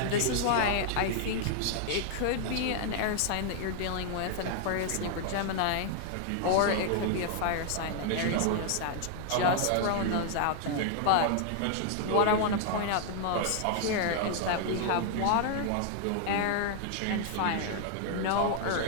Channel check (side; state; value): both; different; correlation 0.00